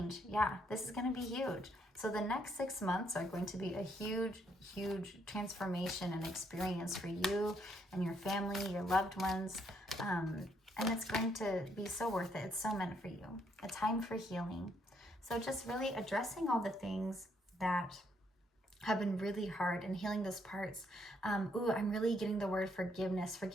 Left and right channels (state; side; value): normal; both; correlation 0.72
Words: Yeah, this is going to be huge. So the next 6 months are going to be a huge transformation and experience for you and your family, your loved ones. And it's going to be so worth it. It's so meant for you. A time for healing. So just really addressing all the things that have been really hard and healing those parts. I'm really getting the word forgiveness,